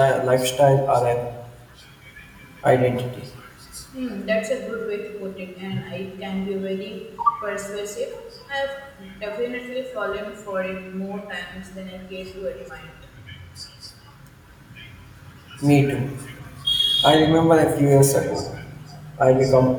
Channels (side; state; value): both; identical; correlation 1.00